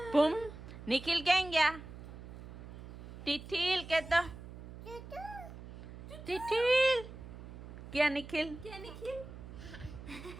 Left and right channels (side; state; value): right; noise; hum, 13 dB below the sound